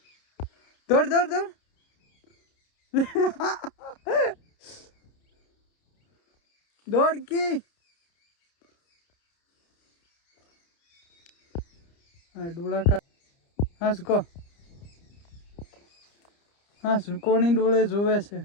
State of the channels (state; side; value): late; right; 30 ms